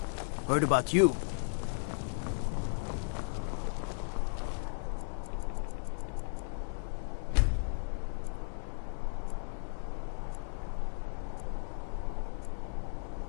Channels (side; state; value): right; silent; digital silence